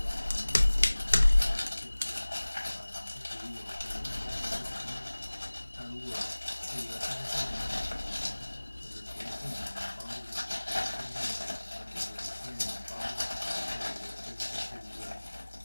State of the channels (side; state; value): both; inverted; correlation -1.00